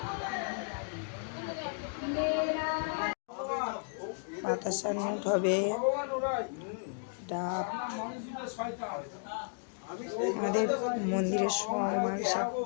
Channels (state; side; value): silent; right; digital silence